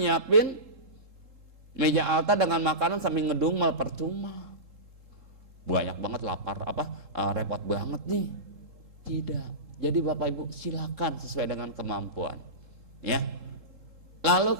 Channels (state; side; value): late; left; 3.7 ms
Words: meja altar dengan makanan sambil ngedumel, percuma. Banyak banget lapar, repot banget nih. Tidak. Jadi Bapak Ibu silakan sesuai dengan kemampuan. Ya.